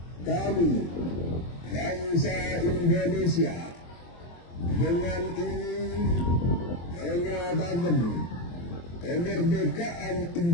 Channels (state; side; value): late; right; 23 ms